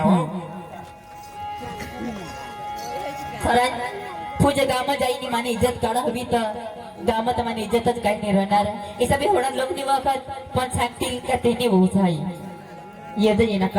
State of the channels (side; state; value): both; identical; correlation 1.00